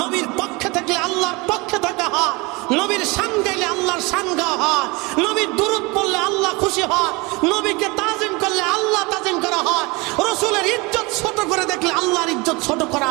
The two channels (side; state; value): left; quieter; 25.7 dB